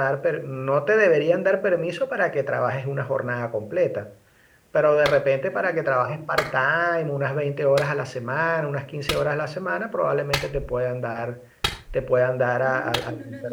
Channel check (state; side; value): identical; both; correlation 1.00